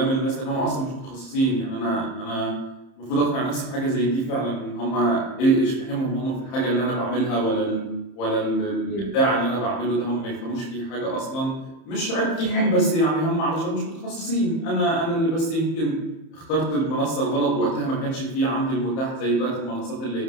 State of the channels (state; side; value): late; right; 30 ms